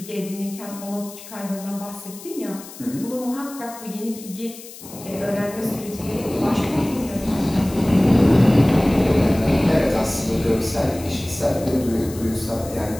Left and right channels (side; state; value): left; noise; hiss, 16 dB below the sound